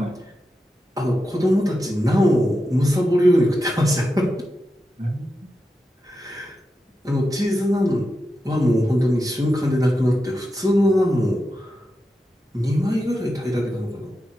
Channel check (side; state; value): both; normal; correlation 0.89